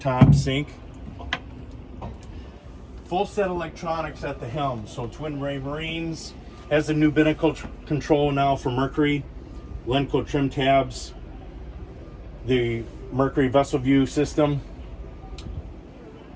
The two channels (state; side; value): identical; both; correlation 1.00